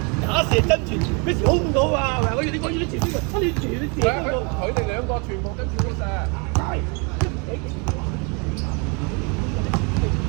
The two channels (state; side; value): quieter; left; 33.0 dB